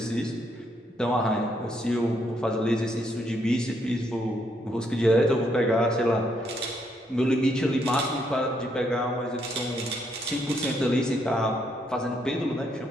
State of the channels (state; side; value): normal; both; correlation 0.74